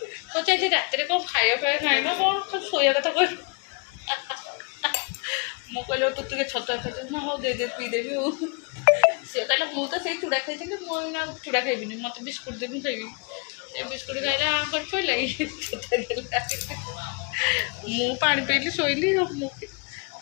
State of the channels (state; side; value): quieter; right; 34.4 dB